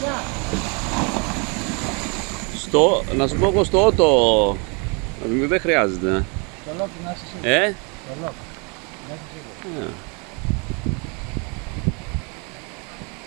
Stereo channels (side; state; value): left; quieter; 33.1 dB